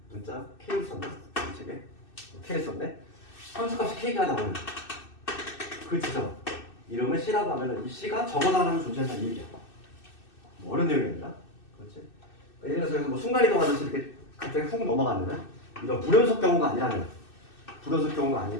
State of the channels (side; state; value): right; late; 2.6 ms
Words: 문자 K를 썼나? 이 책에 K를 썼네? 함수값이 K가 나오는 그 지점 이름을 C라고 하면 이 C가 적어도 하나는 존재한다는 얘기야. 뭐 어려운 내용입니다. 그렇지? 예를 들어서 뭐 순간이동하듯이 이렇게 갑자기 훅 넘어가는 이런 불연속 경우가 아니라면, 불연속 경우가